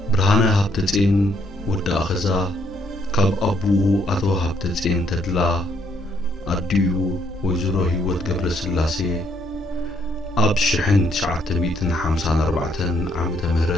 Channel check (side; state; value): both; normal; correlation 0.71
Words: برهانة هابتتين ودي أخزا كاب أبوه أتو هابتتين تدلا أديو ويزرو هيوت قبل سلاسي أب شحن شعات ميتن حمسان أربعتن عمت